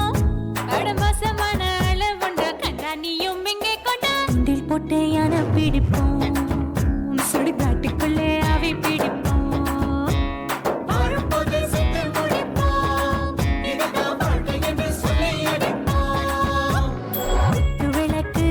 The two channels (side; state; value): both; identical; correlation 1.00